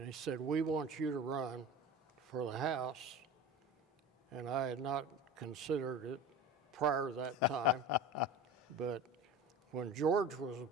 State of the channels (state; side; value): normal; both; correlation 0.33